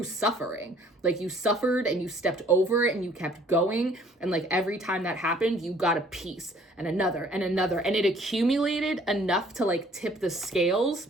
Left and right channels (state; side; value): normal; both; correlation 0.57